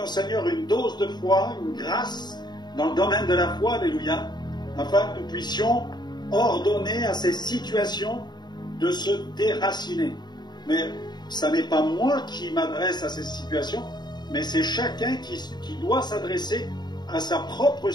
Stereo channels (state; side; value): late; right; 0.21 ms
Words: Seigneur une dose de foi, une grâce dans le domaine de la foi, alléluia, afin que nous puissions ordonner à ces situations de se déraciner. Mais ça n'est pas moi qui m'adresse à ces situations, mais c'est chacun qui doit s'adresser à sa propre